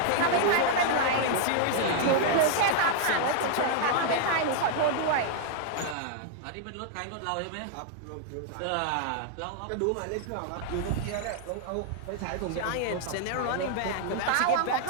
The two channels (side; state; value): both; different; correlation -0.01